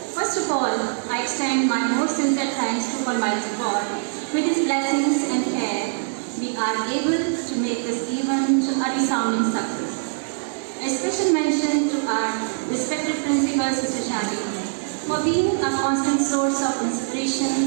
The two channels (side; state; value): left; silent; digital silence